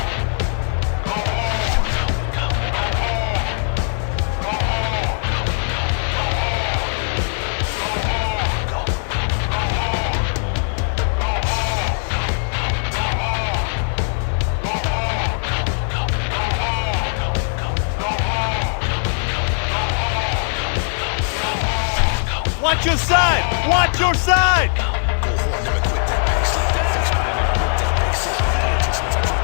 Watch your side! Watch your side!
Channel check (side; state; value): right; silent; 66 dB below the other